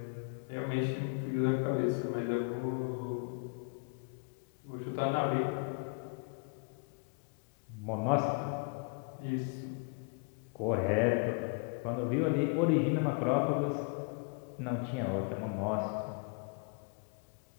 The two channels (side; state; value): right; quieter; 38.3 dB